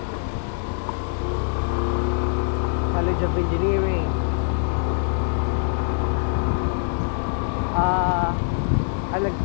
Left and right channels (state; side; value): silent; right; 60 dB below the other